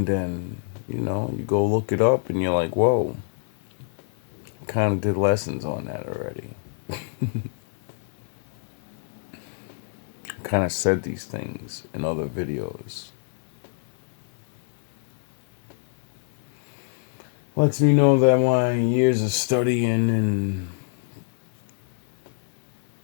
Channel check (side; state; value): right; silent; 61 dB below the other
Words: then, you go look it up and you're like, whoa, kind of did lessons on that already. Kind of said these things in other videos. Lets me know that my years of studying and